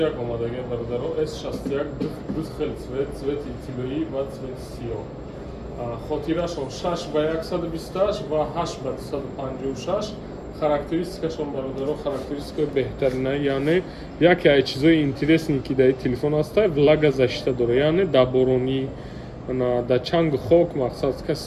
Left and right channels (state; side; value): identical; both; correlation 1.00